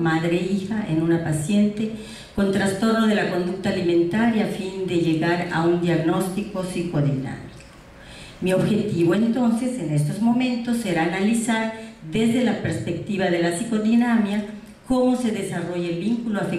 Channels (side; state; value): both; identical; correlation 1.00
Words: en una paciente con trastorno de la conducta alimentaria a fin de llegar a un diagnóstico psicodinámico? Mi objetivo entonces en estos momentos será analizar desde la perspectiva de la psicodinamia cómo se desarrolla el vínculo